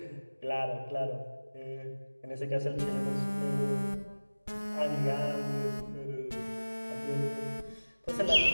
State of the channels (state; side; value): inverted; both; correlation -1.00